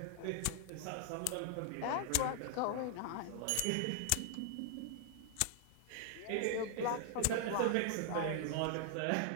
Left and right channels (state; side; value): different; both; correlation 0.00